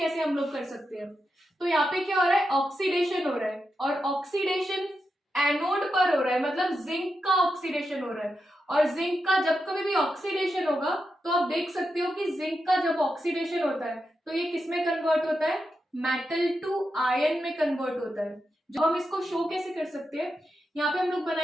हम लोग कर सकते हैं। तो यहाँ पे क्या हो रहा है, ऑक्सीडेशन हो रहा है, और ऑक्सीडेशन एनोड पर हो रहा है, मतलब जिंक का ऑक्सीडेशन हो रहा है। और जिंक का जब कभी भी ऑक्सीडेशन होगा तो आप देख सकते हो कि जिंक का जब ऑक्सीडेशन होता है तो ये किस में कन्वर्ट होता है, मेटल टू आयन में कन्वर्ट होता है। जो हम इसको शो कैसे कर सकते हैं, यहाँ पे हम लोग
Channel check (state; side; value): normal; both; correlation 0.87